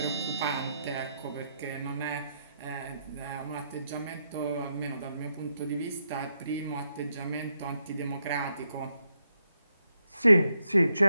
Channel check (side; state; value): both; inverted; correlation -0.80